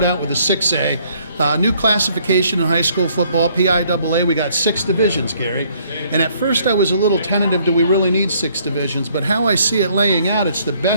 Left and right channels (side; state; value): both; inverted; correlation -0.64